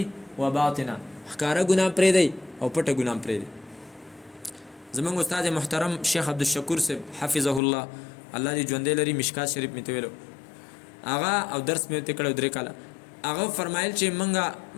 وباطنه ښکاره ګناه پرېږدئ او پټه ګناه پرېږدئ زمونږ استاد محترم شیخ عبدالشکور صاحب حفظه الله الله دې ژوندی لري مشکات شریف مې ته ویلو هغه او درس مې ورته کړی 3 کاله هغه فرمایل چې موږ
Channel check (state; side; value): drops out; right; at 7.6 s